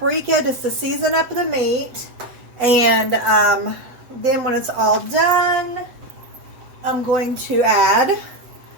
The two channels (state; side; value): late; left; 7.9 ms